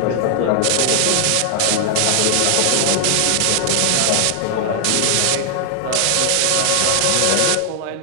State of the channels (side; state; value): both; different; correlation 0.00